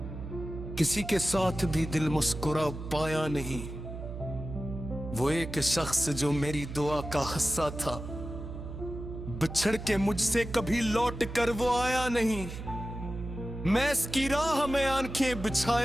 किसी के साथ भी दिल मुस्कुरा पाया नहीं। वो एक शख्स जो मेरी दुआ का हिस्सा था, बिछड़ के मुझसे कभी लौट कर वो आया नहीं। मैं इसकी राह में आंखें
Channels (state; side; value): noise; right; hum, 9 dB below the sound